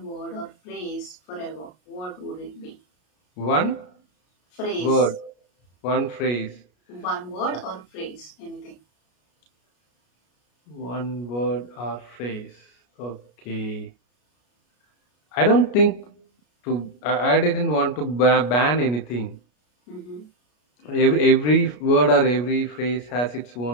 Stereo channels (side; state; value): right; late; 33 ms